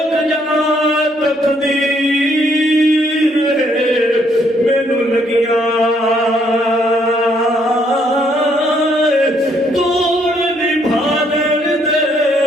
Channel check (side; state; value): both; normal; correlation 0.69